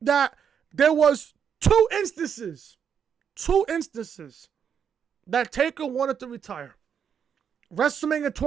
that there was two instances that Taker wanted to retire. WrestleMania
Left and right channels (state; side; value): quieter; left; 7.6 dB